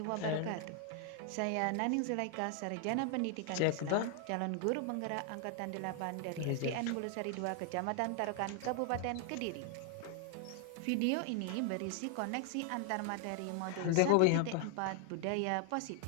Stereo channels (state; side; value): different; both; correlation 0.00